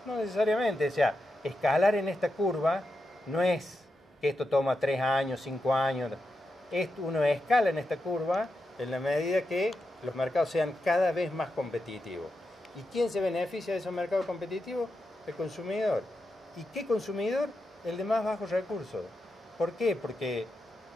No necesariamente, o sea, escalar en esta curva no es que esto toma 3 años, 5 años. Uno escala en esta curva en la medida que los mercados sean cada vez más competitivos. ¿Y quién se beneficia de esos mercados competitivos? El consumidor. ¿Y qué consumidor? El de más bajos recursos. ¿Por qué? Porque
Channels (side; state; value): both; normal; correlation 0.87